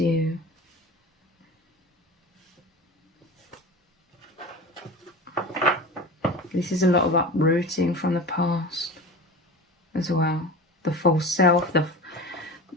This is a lot of uprooting from the past. as well. The false self,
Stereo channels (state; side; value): normal; both; correlation 0.32